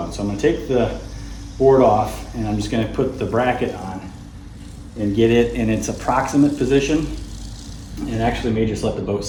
So I'm going to take the board off, and I'm just going to put the bracket on and get it in its approximate position, and actually may just let the boat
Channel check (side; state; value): both; identical; correlation 1.00